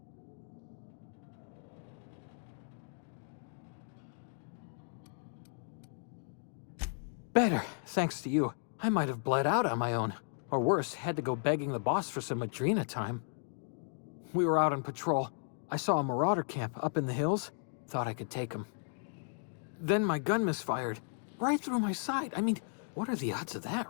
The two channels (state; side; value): silent; right; digital silence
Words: Better, thanks to you. I might have bled out on my own. Or worse, had to go begging the boss for some Adrena time. We were out on patrol. I saw a marauder camp up in the hills. Thought I could take him. Then my gun misfired. Right through my side. I mean, what are the odds of